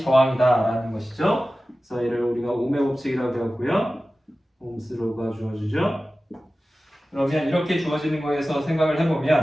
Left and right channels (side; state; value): both; normal; correlation 0.96